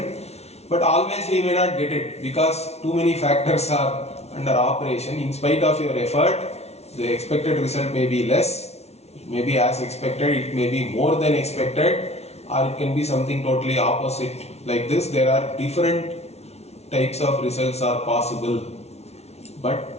But always we may not get it because too many factors are under operation. In spite of your effort, the expected result may be less, it may be as expected, it may be more than expected, or it can be something totally opposite. Like this, there are different types of results are possible.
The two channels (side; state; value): right; late; 0.31 ms